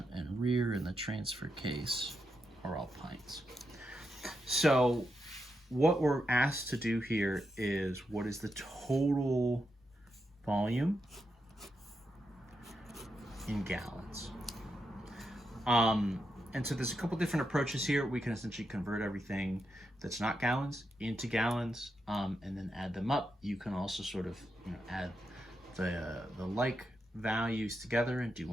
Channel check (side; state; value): both; normal; correlation 0.84